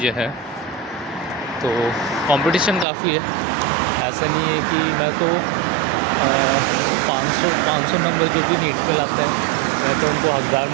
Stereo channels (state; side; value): drops out; left; at 2.9 s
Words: हैं, तो कंपटीशन काफ़ी है। ऐसा नहीं है कि मैं तो 500 नंबर जो भी नीट पे लाते हैं, मैं तो उनको हकदार